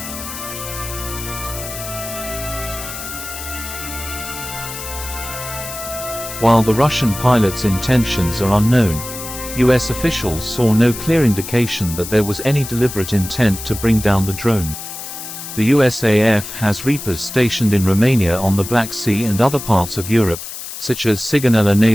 While the Russian pilot's intentions are unknown, U.S. officials saw no clear indication that there was any deliberate intent to bring down the drone. The USAF has Reapers stationed in Romania on the Black Sea and other parts of Europe, such as Sigonella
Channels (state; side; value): noise; left; hiss, 10 dB below the sound